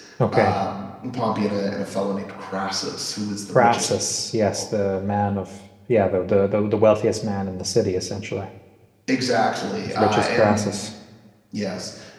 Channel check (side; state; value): both; identical; correlation 1.00